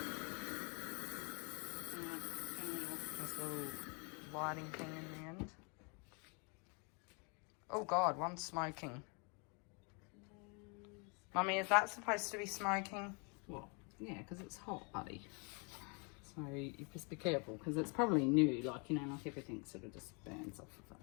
This little lighting thing in the end. Oh God, one's smoking. Mummy, is that supposed to be smoking? Well, yeah, because it's hot, buddy. So you just be careful, because it's probably new, like everything sort of just burns off of it.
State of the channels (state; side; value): quieter; right; 34.2 dB